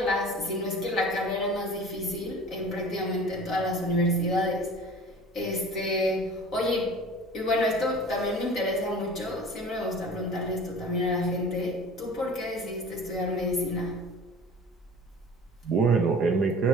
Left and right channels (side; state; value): both; normal; correlation 0.42